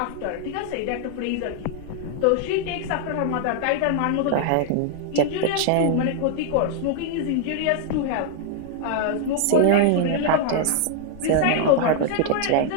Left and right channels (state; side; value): different; both; correlation 0.00